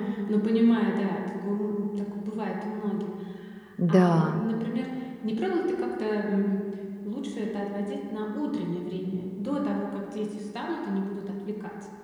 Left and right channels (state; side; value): identical; both; correlation 1.00